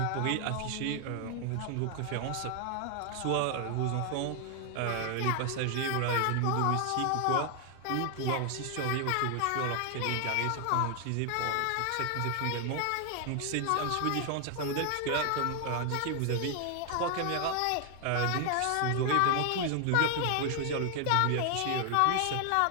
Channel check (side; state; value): both; different; correlation 0.00